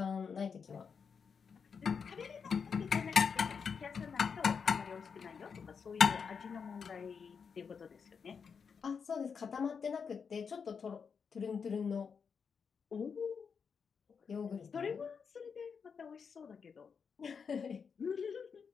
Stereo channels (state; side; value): quieter; right; 6.1 dB